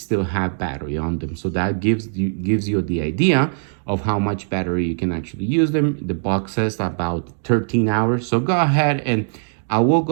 have battery on them. So that gives you the idea of how much battery you can actually use them. The box says about 13 hours. So go ahead, and I will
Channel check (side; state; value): left; silent; digital silence